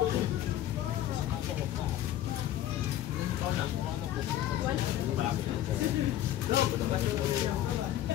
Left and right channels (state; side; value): quieter; right; 12.7 dB